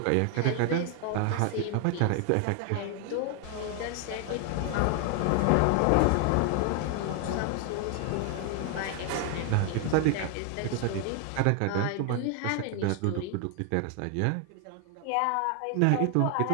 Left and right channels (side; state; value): both; different; correlation 0.00